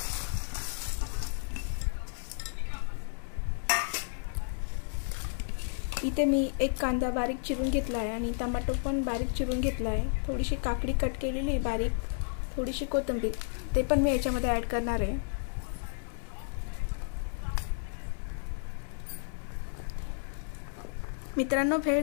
इथे मी एक कांदा बारीक चिरून घेतला आहे आणि टमाटो पण बारीक चिरून घेतला आहे। थोडीशी काकडी कट केलेली बारीक, थोडीशी कोथिंबीर ते पण मी याच्यामध्ये ॲड करणार आहे। मित्रांनो, भेळ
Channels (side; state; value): right; silent; 56 dB below the other